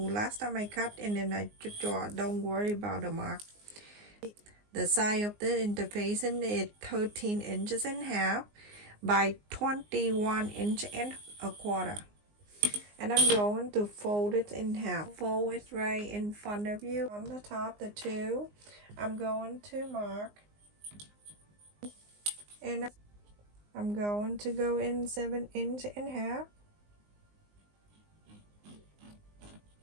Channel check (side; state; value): left; late; 19 ms